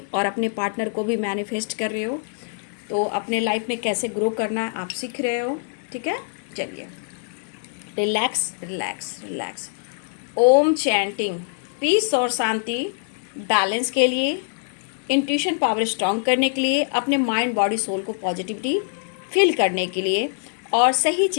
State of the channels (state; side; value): silent; right; digital silence